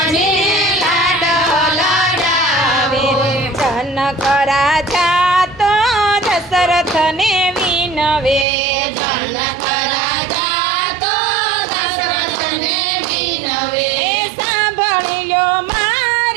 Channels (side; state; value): left; drops out; at 8.5 s